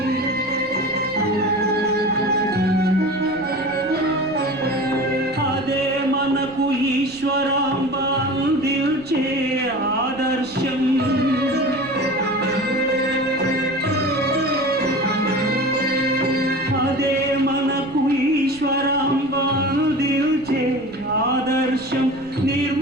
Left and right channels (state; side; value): noise; right; rumble, 22 dB below the sound